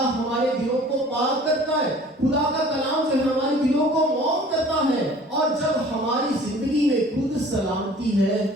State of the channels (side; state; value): both; normal; correlation 0.49